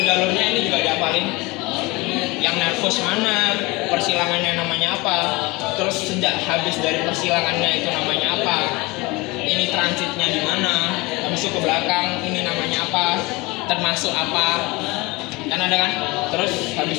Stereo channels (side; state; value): right; quieter; 23.8 dB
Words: ini juga dihafalin. Yang nervus mana, persilangannya namanya apa, terus sejak habis dari persilangannya itu namanya apa, ini transitnya di mana, habis itu ke belakang ini namanya apa, termasuk apa, kan ada kan, terus